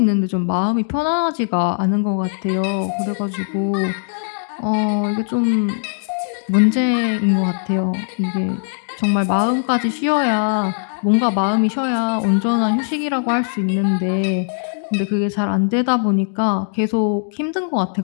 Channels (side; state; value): right; silent; digital silence